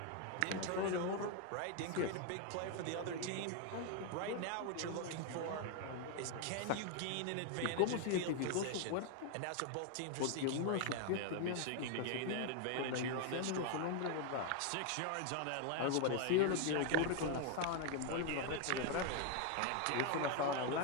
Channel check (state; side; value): different; both; correlation 0.01